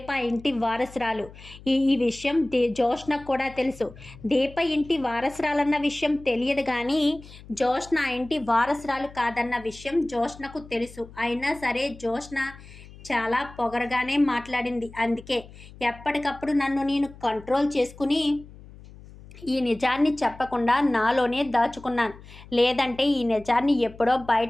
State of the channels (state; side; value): noise; left; hum, 19 dB below the sound